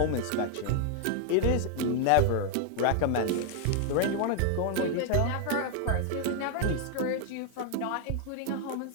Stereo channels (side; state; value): both; different; correlation 0.00